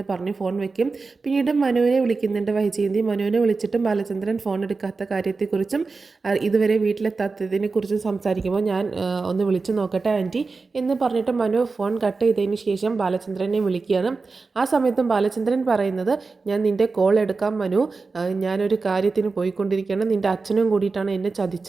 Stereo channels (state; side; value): quieter; left; 4.2 dB